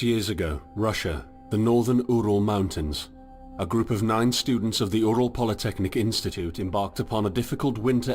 years ago, Russia, the northern Ural Mountains. A group of 9 students of the Ural Polytechnic Institute embarked upon a difficult winter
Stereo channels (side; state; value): both; identical; correlation 1.00